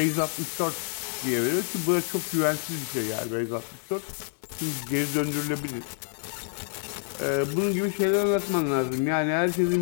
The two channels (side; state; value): right; silent; 56 dB below the other